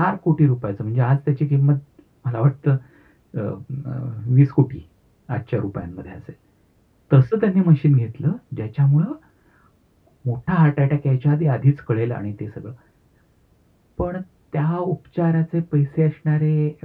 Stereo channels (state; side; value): identical; both; correlation 1.00